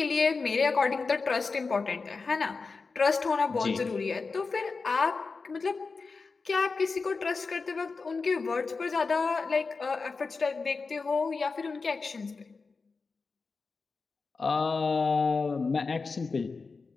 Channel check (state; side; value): quieter; right; 4.4 dB